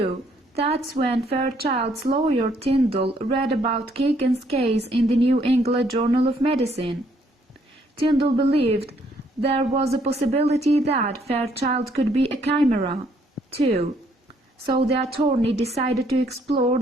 that's when Fairchild's lawyer Tyndall read about Keegan's case in the New England Journal of Medicine. Tyndall believed there was a possibility that Fairchild could be a chimera, too, so the attorney decided to explore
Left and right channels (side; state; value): both; normal; correlation 0.68